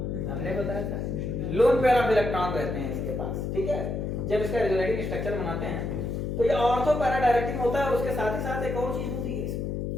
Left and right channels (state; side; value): noise; left; hum, 2 dB below the sound